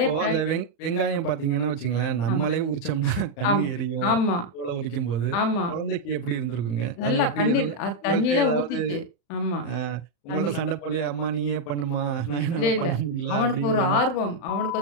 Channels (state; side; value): late; right; 35 ms